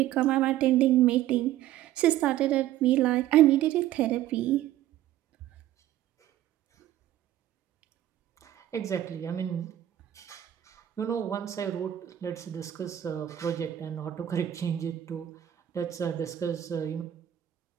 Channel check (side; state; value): left; quieter; 12.8 dB